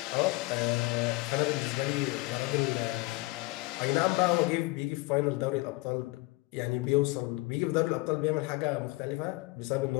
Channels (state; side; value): quieter; right; 22.6 dB